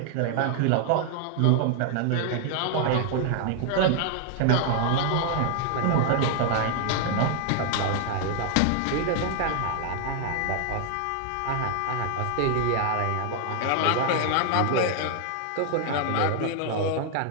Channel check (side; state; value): both; different; correlation 0.00